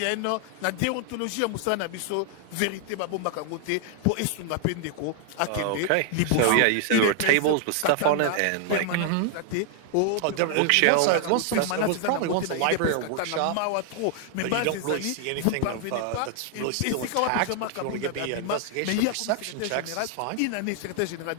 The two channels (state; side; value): different; both; correlation 0.00